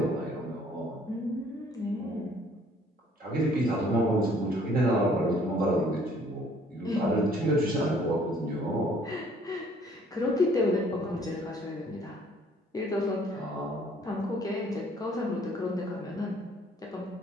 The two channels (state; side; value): normal; both; correlation 0.59